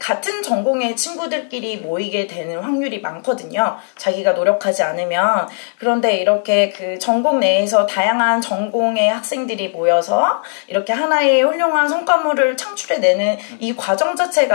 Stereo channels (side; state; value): right; silent; digital silence